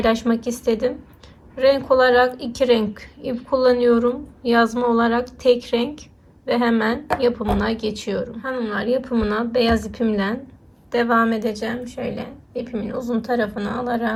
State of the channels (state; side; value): identical; both; correlation 1.00